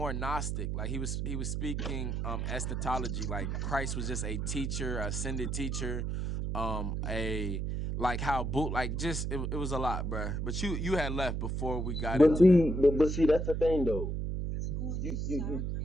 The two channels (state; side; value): noise; right; hum, 1 dB below the sound